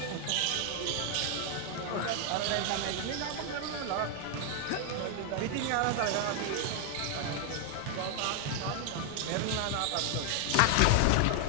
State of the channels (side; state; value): both; different; correlation 0.00